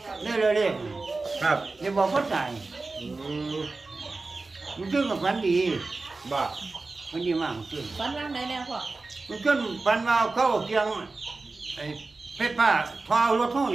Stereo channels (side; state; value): left; quieter; 3.6 dB